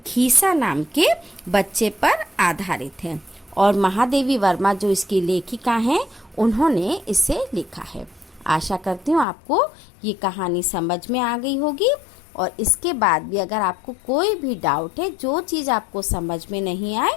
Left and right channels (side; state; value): right; drops out; at 9.2 s